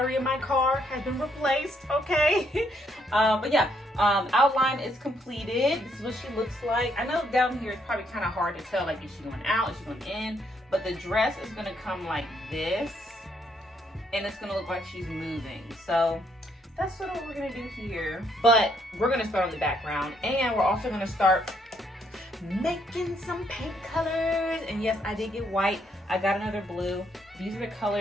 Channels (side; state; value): both; normal; correlation 0.72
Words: in my car has been replaced. Okay. But yeah, outline is completed. This is what she looks like. I know down here it's probably kind of hard to tell, like, is she going out, is she going in? But the dress is going to come like this, and it's going to look like she's moving. So that's sort of what we're going to do here. But we're going to start on the background, and we're also going to start making some paint colors. And yes, I did get white. I got another blue. These are the